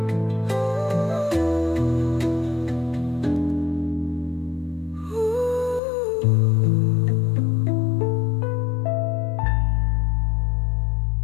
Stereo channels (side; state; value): right; drops out; at 5.8 s